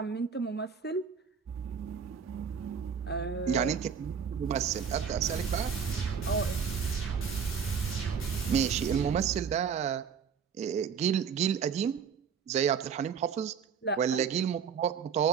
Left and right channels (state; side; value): quieter; left; 6.8 dB